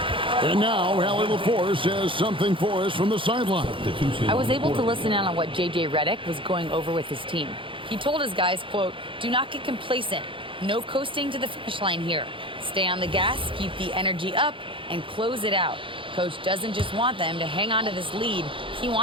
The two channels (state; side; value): late; left; 0.25 ms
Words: And now, Allie LaForce has something for us from the sideline. I was able to listen in on what J.J. Redick was going over with his team. He told his guys, quote, "Do not get complacent. No coasting to the finish line here. Stay on the gas, keep the energy up, and close it out. Coach doesn't just want them to hang on to this lead. He